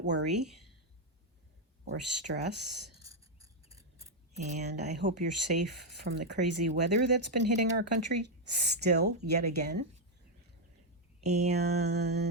worry or stress. And I hope you're safe from the crazy weather that's been hitting our country still, yet again.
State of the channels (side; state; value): both; normal; correlation 0.01